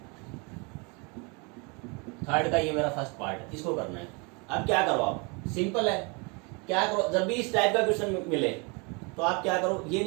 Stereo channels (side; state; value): left; quieter; 31.0 dB